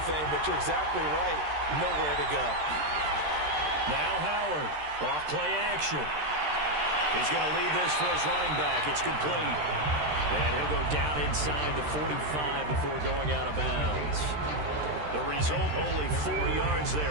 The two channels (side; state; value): left; late; 13 ms